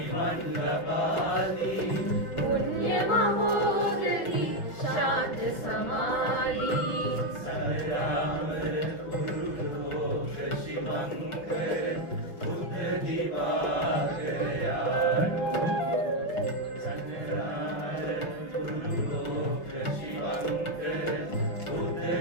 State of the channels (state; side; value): late; right; 6.1 ms